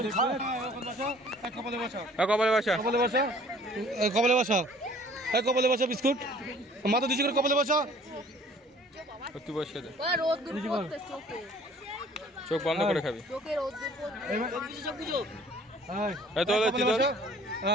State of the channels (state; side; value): normal; both; correlation 0.53